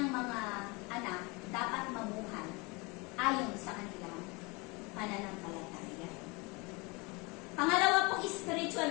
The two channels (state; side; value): quieter; right; 27.2 dB